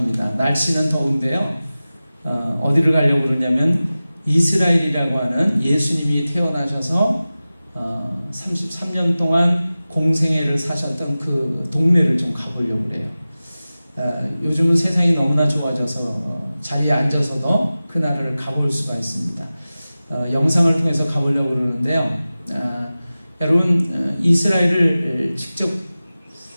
날씨는 더운데요. 어디를 가려고 그러냐면 이스라엘이라고 하는 예수님이 태어나셔서 33년 동안 공생애를 사셨던 그 동네를 좀 가보려고 그래요. 요즘은 세상이 너무나 좋아져서 자리에 앉아서도 그 나라를 가볼 수가 있습니다. 영상을 통해서 가보려고 그러는데요. 여러분 이스라엘을 직접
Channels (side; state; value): both; inverted; correlation -0.96